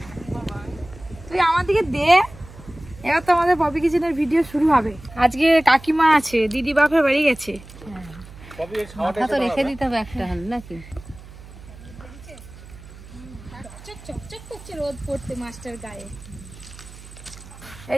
তুই আমার দিকে দে। এবার তো আমাদের পপি কিচেনের ভিডিও শুরু হবে। আজকে কাকিমা আছে, দিদি বাপের বাড়ি গেছে। মাথা তো রেখে দিতে হবে একটা নাকি। রোদ পড়তে মাছটার গায়ে।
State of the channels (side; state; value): right; noise; hum, 18 dB below the sound